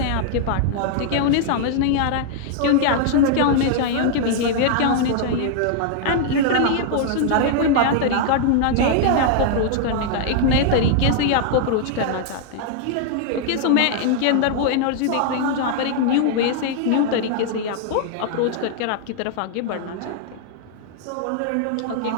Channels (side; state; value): both; different; correlation -0.01